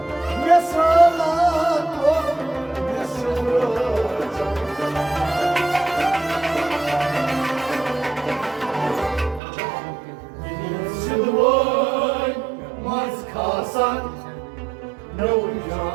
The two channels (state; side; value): drops out; left; at 9.4 s